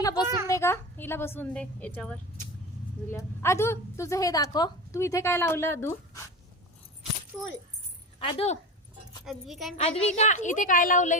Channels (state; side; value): normal; both; correlation 0.26